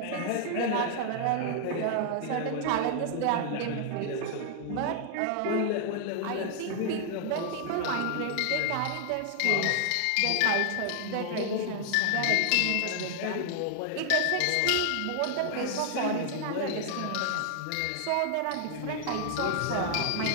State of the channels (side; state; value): both; different; correlation 0.00